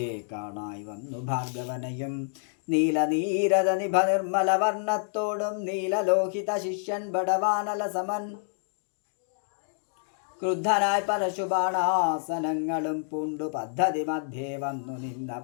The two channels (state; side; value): silent; right; digital silence